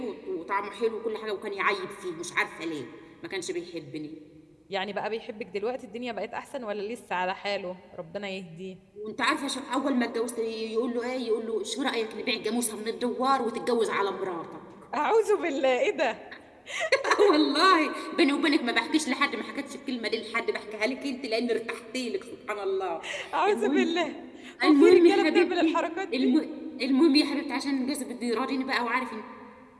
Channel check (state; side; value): identical; both; correlation 1.00